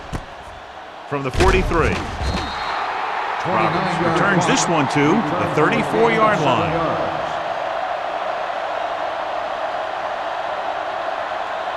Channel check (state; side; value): identical; both; correlation 1.00